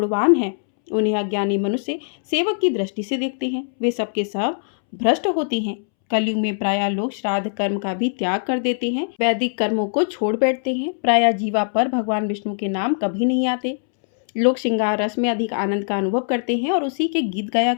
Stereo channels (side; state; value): right; silent; 65 dB below the other